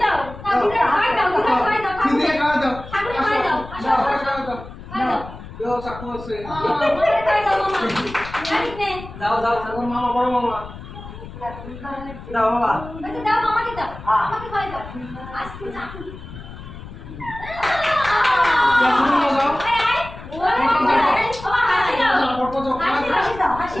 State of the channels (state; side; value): noise; left; rumble, 14 dB below the sound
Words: দাও ঠাকুরে খাই দাও খাই দাও কি দিয়ে খাওয়া দাও ঠাকুরে খাই দাও দাও খাওয়া দাও খাই দাও ও চাকু আছে ঠাকুরে খাই দাও মামা জানিস নে দাও দাও ঠাকুর মামা বড় মামা দাও বাবা আচ্ছা দাও মামাকে দাও আমাকে খাই দাও আজকে যা দাও আয় আয় ও হাসি দাও কত দাও হাসি দাও হাসি